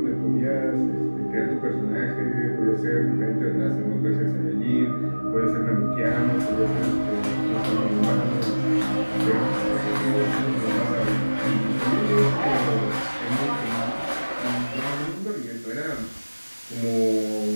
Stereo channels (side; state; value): both; inverted; correlation -1.00